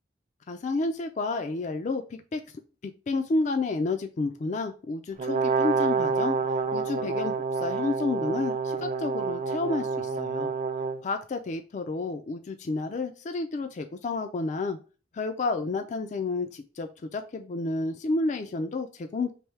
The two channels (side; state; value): both; normal; correlation 0.36